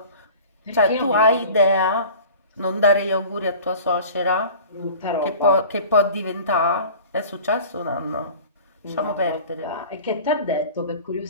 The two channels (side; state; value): both; inverted; correlation -0.42